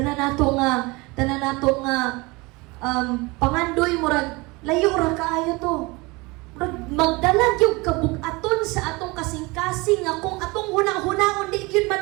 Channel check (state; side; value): quieter; left; 24.7 dB